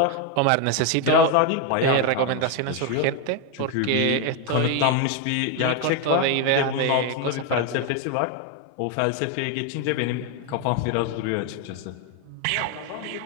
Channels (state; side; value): different; both; correlation 0.02